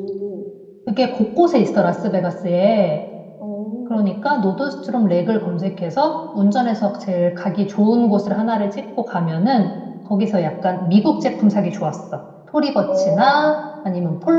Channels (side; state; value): both; identical; correlation 1.00